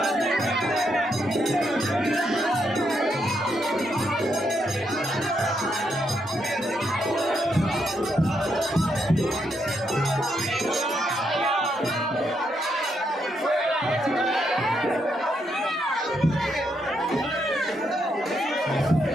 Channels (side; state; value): both; normal; correlation 0.78